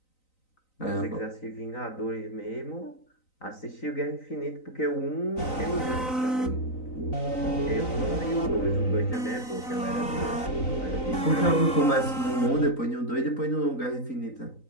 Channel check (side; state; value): right; late; 3.9 ms